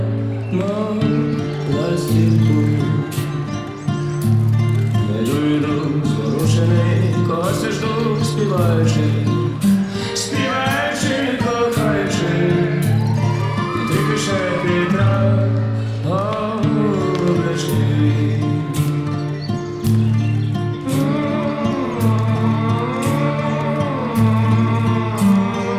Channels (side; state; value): both; identical; correlation 1.00